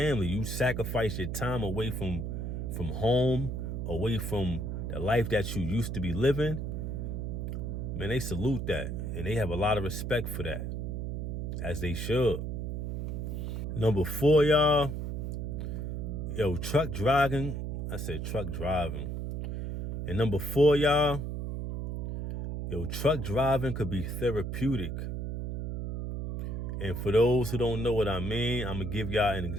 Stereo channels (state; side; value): noise; right; hum, 3 dB below the sound